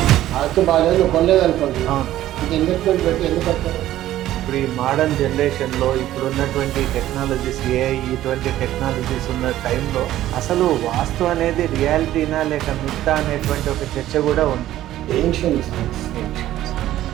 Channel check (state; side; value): quieter; left; 13.7 dB